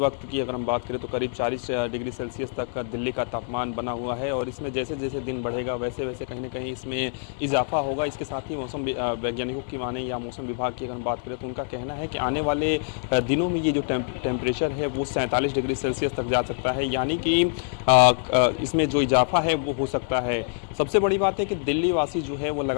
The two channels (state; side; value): silent; right; digital silence